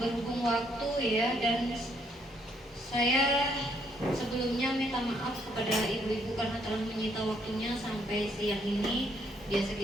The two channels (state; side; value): normal; both; correlation 0.70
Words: waktu ya, dan saya sebelumnya minta maaf kepada ibu-ibu karena telah menyita waktunya sampai siang ini. Biasa